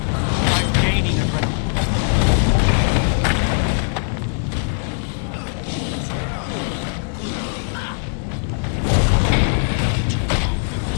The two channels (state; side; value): silent; right; 61 dB below the other